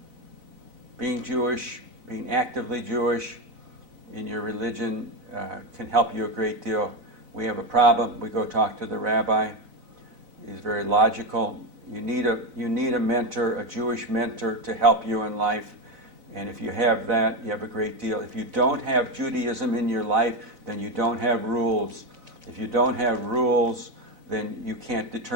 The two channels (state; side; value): late; left; 4.0 ms